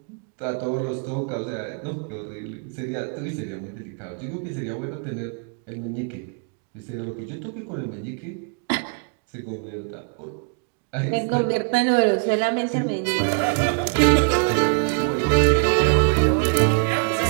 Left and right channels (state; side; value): quieter; left; 39.7 dB